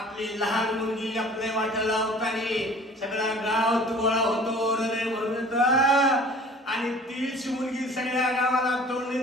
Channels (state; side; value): normal; both; correlation 0.48